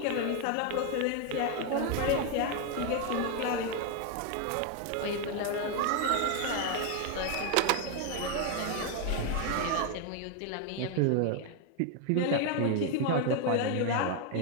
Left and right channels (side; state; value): both; different; correlation 0.01